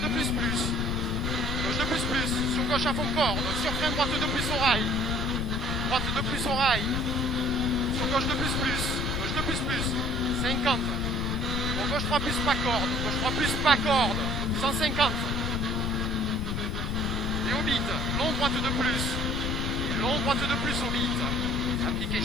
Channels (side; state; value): left; noise; rumble, 1 dB below the sound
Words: de plus. Gauche de plus, sur gauche à fond corde, sur frein droite de plus au rail. Droite de plus au rail. Sur gauche de plus, gauche de plus, 50. Pour gauche 3 plus, pas corde. Gauche 3 plus, pas corde. 150. Et au bit, long droite de plus. Et long droite de plus au bit. Appliqué,